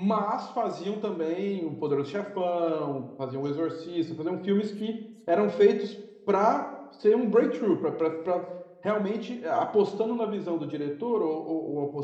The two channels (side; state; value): both; identical; correlation 1.00